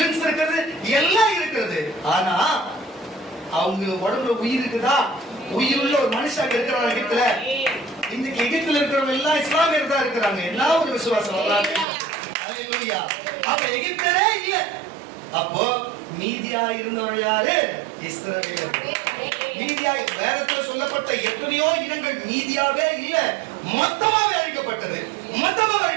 இருக்கிறது, எல்லாம் இருக்கிறது. ஆனா அவங்க உடம்புல உயிர் இருக்குதா? உயிருள்ள ஒரு மனுஷன் இருக்கிறாங்க எகிப்துல. இன்னைக்கு எகிப்துல இருக்கிறவங்க எல்லாம் இஸ்லாமியர் தான் இருக்கிறாங்க. என்ன ஒரு விசுவாசம். அல்லேலூயா. அப்ப எகிப்தரே இல்ல. அப்போ மீதியா இருந்தவர்கள் யாரு? இஸ்ரவேலர்கள். மீதியா வேதத்துல சொல்லப்பட்ட எத்தனையோ இனங்கள் மீதியாவே இல்ல, மொத்தமாவே அழிக்கப்பட்டது.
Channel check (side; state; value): left; drops out; at 11.9 s